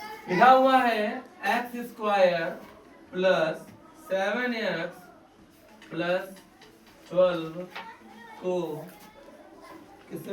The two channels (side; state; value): both; identical; correlation 1.00